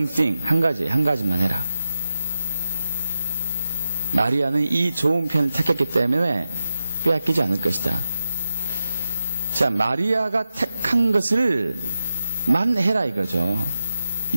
thing, 한 가지만 해라. 마리아는 이 좋은 편을 택했기 때문에 빼앗기지 않을 것이다. 자, 마리아가 택한 것을 만 해라 이거죠.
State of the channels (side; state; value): both; inverted; correlation -0.92